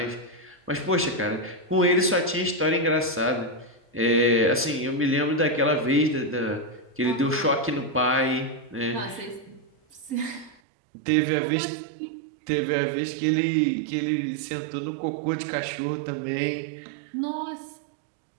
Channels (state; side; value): drops out; left; at 10.6 s